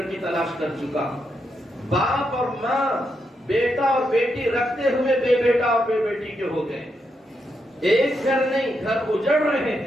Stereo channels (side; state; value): both; normal; correlation 0.82